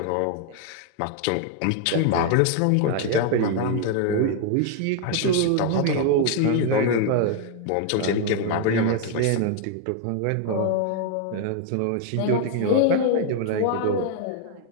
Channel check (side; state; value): both; different; correlation 0.00